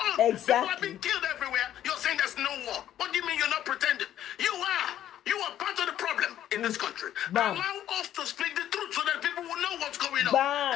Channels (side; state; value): right; quieter; 11.6 dB